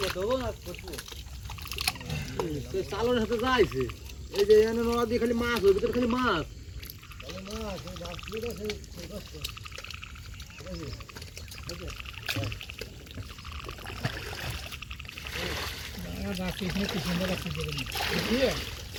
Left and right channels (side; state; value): both; identical; correlation 1.00